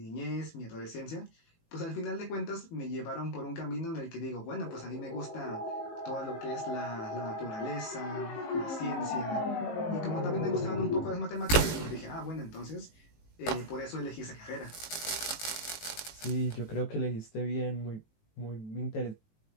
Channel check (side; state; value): right; late; 18 ms